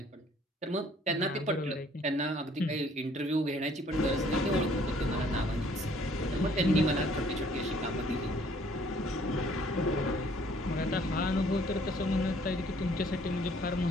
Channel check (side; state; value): both; normal; correlation 0.59